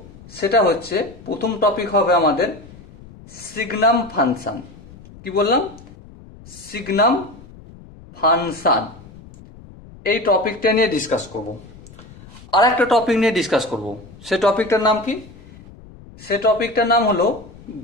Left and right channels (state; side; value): noise; left; rumble, 20 dB below the sound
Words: সেটা হচ্ছে, প্রথম টপিক হবে আমাদের সিগনাম ফাংশন। কি বললাম? সিগনাম ফাংশন। এই টপিকটা নিয়ে ডিসকাস করব। আর একটা টপিক নিয়ে ডিসকাস করব। সে টপিকটার নাম কি? সে টপিকটার নাম হলো